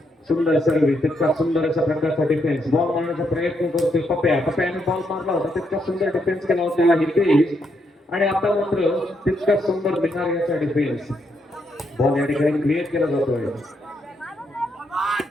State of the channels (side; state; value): both; normal; correlation 0.78